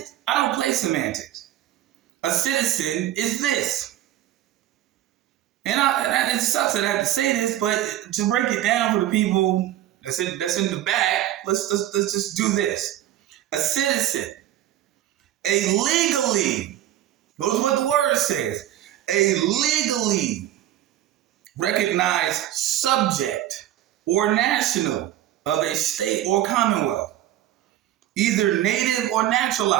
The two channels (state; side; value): quieter; left; 13.0 dB